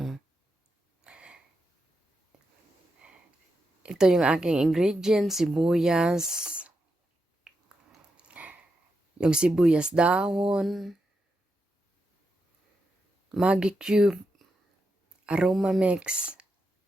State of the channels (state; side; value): normal; both; correlation 0.85